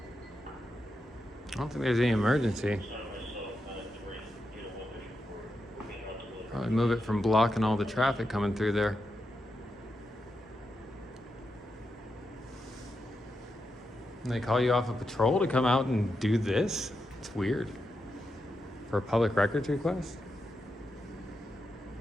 I don't think there's any emergency. Probably move it from blocking all the traffic coming through there. And they call you off a patrol to come out and do this? It's weird. For a public records request?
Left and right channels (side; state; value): both; normal; correlation 0.86